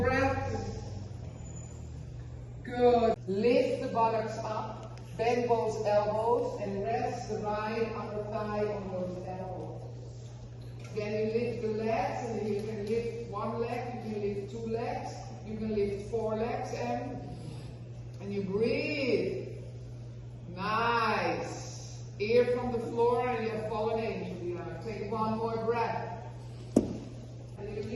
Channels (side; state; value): both; identical; correlation 1.00